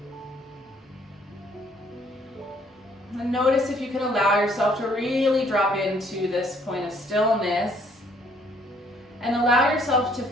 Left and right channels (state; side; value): normal; both; correlation 0.63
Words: And notice if you can allow yourself to really drop into this point of stillness and allow yourself to